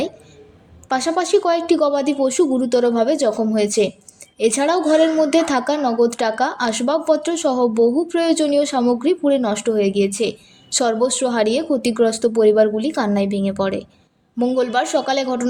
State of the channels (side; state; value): both; identical; correlation 1.00